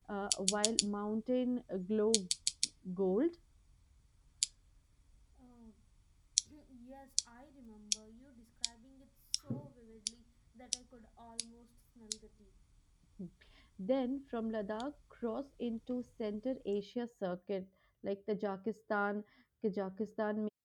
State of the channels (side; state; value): both; identical; correlation 1.00